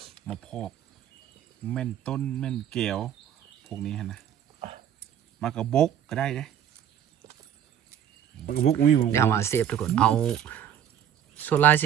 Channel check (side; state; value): left; quieter; 9.7 dB